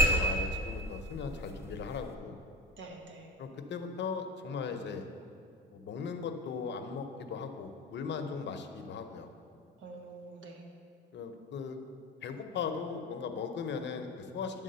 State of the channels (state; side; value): normal; both; correlation 0.25